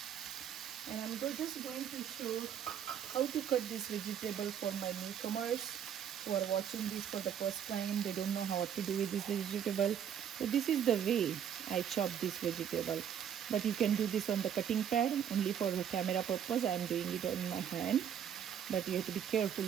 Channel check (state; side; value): quieter; left; 8.9 dB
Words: And I'm just going to show how to cut this vegetable for my newcomers who are watching this for the first time. They don't know how to do with this vegetable. So this is the way I chop this vegetable. But you can do this on the cutting pad. Only for the camera purpose, I am doing it on my hand. But you have to be careful